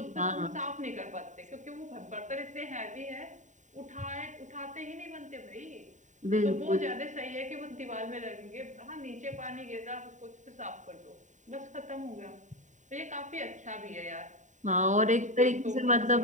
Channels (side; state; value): left; late; 0.36 ms